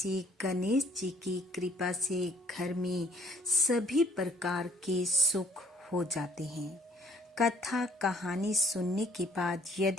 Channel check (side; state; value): both; normal; correlation 0.59